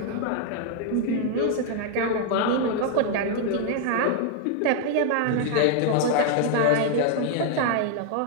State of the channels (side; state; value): both; different; correlation 0.00